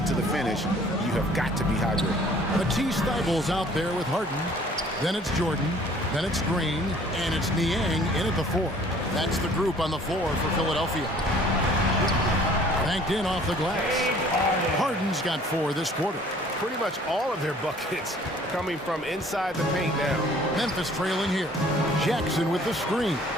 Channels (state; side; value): normal; both; correlation 0.54